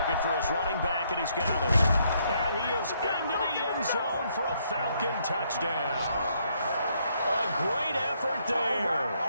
for his running back, and he's got it. And he is into the end zone for a Falcon touchdown. A great effort there.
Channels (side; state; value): both; inverted; correlation -0.72